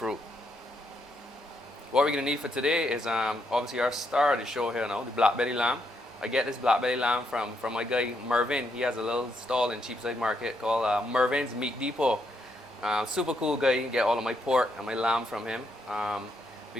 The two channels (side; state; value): both; normal; correlation 0.77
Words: What we're gonna need for today is obviously our star of the show here now, the black belly lamb. I get this black belly lamb from my guy Mervin. He has a little stall in Cheapside Market called Mervin's Meat Depot. Super cool guy. You get all of my pork and my lamb from him.